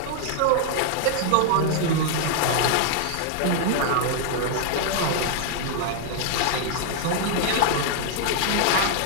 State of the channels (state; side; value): different; both; correlation 0.00